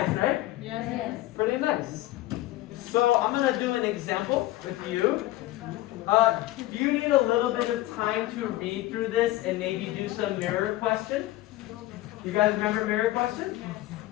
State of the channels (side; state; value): right; quieter; 16.6 dB